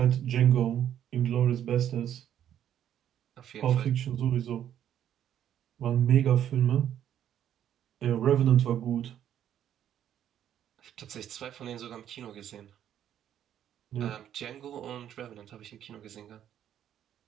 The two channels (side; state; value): left; quieter; 10.4 dB